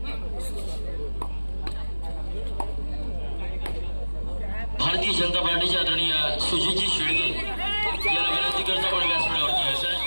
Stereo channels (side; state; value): both; inverted; correlation -1.00